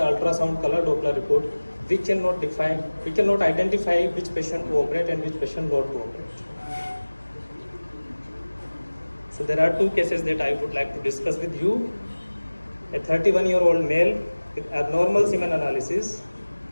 color Doppler report. We cannot identify which patient to operate and which patient not to operate. So there are two cases that I would like to discuss with you. A 31-year-old male with abnormal semen analysis.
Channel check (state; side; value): inverted; both; correlation -1.00